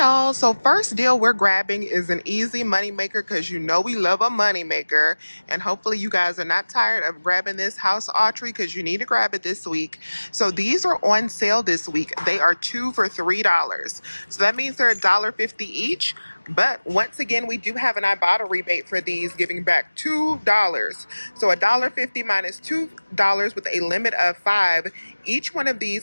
So first deal we're grabbing is an easy money maker, because you know we love a money maker, and hopefully you guys are not tired of grabbing this house archery, because you need to grab it this week. So these are on sale this week. They are 2 for $3. So that means they're $1.50 each. But once again, we do have an Ibotta rebate for these, giving back $2. So $1.50 minus $2 with a limit of 5. Each one of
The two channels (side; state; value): both; inverted; correlation -1.00